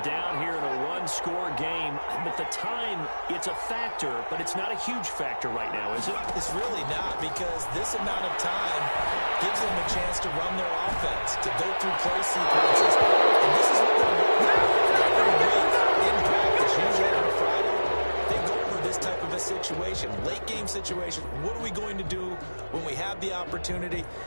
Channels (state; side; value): inverted; both; correlation -1.00